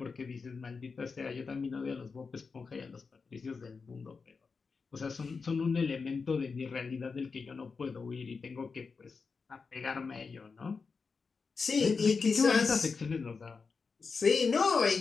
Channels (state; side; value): quieter; right; 4.9 dB